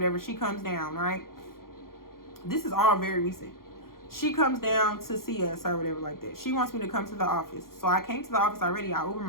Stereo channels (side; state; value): right; late; 0.92 ms